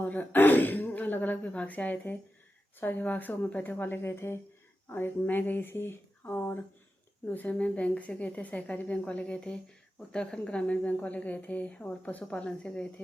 अलग अलग विभाग से आए थे। सभी विभाग से होम्योपैथिक वाले गए थे, और एक मैं गई थी, और दूसरे में बैंक से गए थे, सहकारी बैंक वाले गए थे, उत्तराखंड ग्रामीण बैंक वाले गए थे, और पशुपालन से गए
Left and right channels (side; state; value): both; normal; correlation 0.91